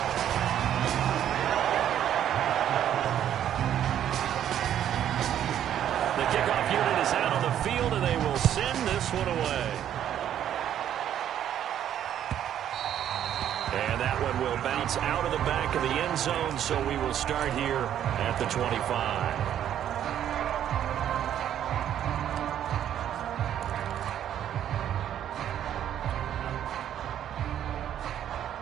The kickoff unit is out on the field, and they will send this one away. And that one will bounce out of the back of the end zone, so we will start here at the 25.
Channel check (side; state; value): left; quieter; 10.5 dB